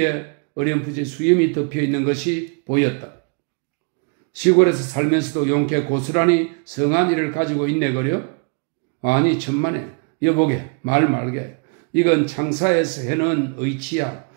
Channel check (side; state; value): left; quieter; 35.3 dB